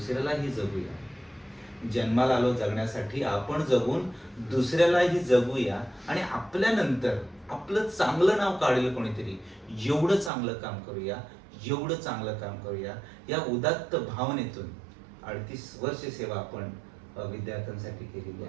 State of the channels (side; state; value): left; drops out; at 10.3 s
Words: जगूया. जन्माला आलो जगण्यासाठी आपण जगून दुसऱ्यालाही जगूया आणि आपल्यानंतर आपलं चांगलं नाव काढेल कोणीतरी, एवढं चांगलं काम करूया, एवढं चांगलं काम करूया. या उदात्त भावनेतून 38 वर्ष सेवा आपण विद्यार्थ्यांसाठी केलेली